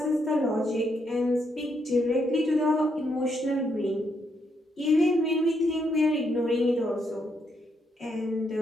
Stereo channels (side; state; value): both; normal; correlation 0.77